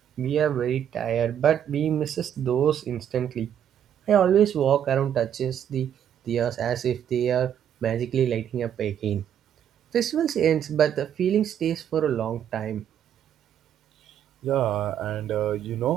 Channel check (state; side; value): quieter; left; 9.5 dB